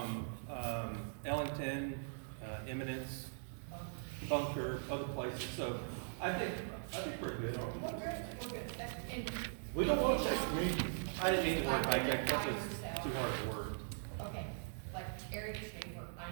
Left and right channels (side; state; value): left; silent; digital silence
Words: Ellington, Eminence, Bunker, other places, so I think we're good. We don't want to take the meeting. I didn't mean the word hijack, that's just too hard a word. Okay, like Eric Schaefer, I